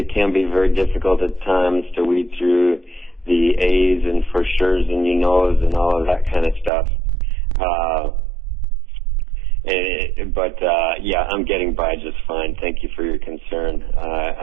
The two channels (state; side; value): drops out; left; at 6.7 s